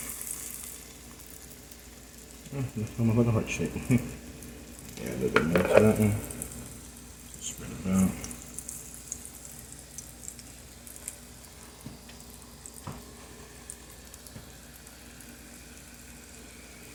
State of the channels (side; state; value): both; identical; correlation 1.00